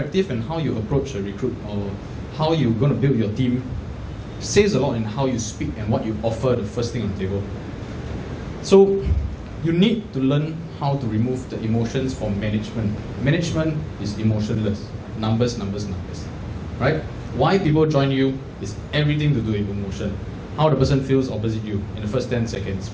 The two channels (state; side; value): identical; both; correlation 1.00